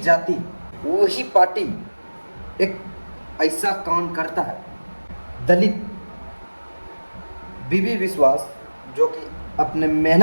वही पार्टी एक ऐसा काम करता है। दलित बीबी बिस्वास जो कि अपने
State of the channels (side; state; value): both; inverted; correlation -1.00